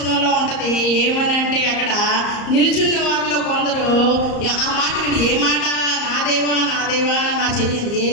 ఉంటుంది. ఏమని అంటే అక్కడ నిలుచున్న వారిలో కొందరు ఆ మాట విని, ఏ మాట? నా దేవా నా దేవా నా చెయ్యింది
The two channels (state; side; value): late; right; 34 ms